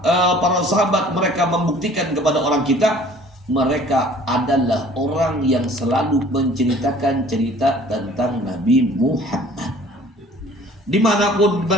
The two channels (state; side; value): normal; both; correlation 0.52